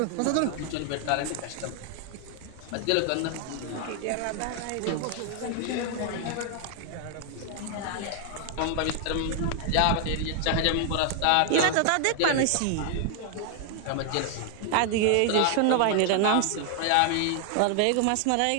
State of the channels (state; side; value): different; both; correlation 0.00